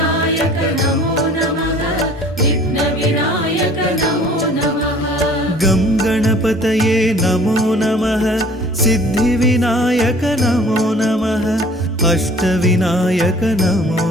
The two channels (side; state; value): both; normal; correlation 0.51